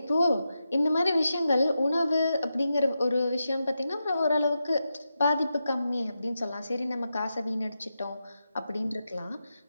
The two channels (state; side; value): inverted; both; correlation -0.89